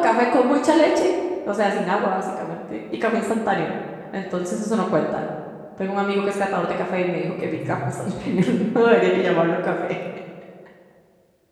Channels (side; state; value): both; identical; correlation 1.00